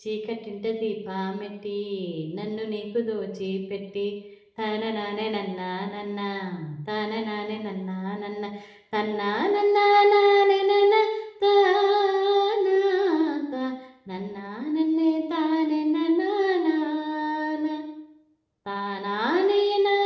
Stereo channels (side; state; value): both; identical; correlation 1.00